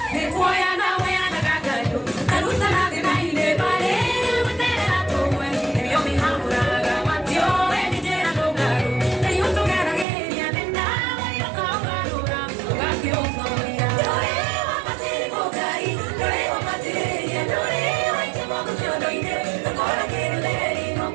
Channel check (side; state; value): left; drops out; at 10.1 s